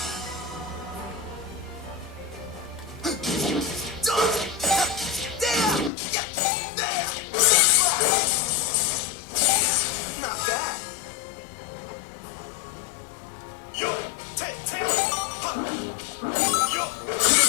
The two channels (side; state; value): right; drops out; at 5.9 s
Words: Not bad. Yo,